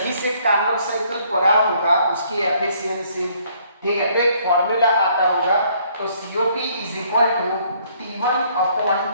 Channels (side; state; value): both; inverted; correlation -0.64